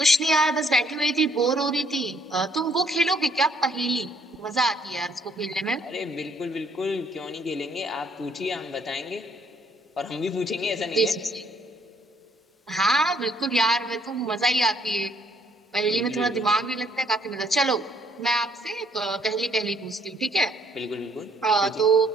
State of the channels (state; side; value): normal; both; correlation 0.66